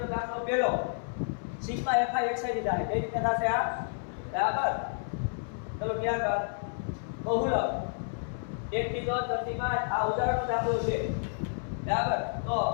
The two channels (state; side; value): silent; right; 57 dB below the other